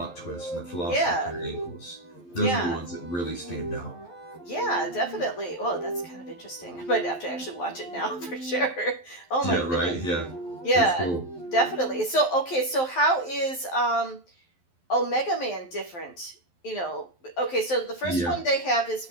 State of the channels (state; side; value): late; right; 11 ms